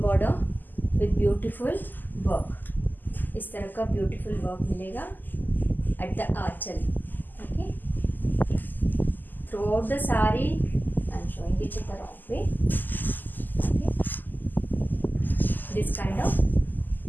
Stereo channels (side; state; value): right; late; 0.087 ms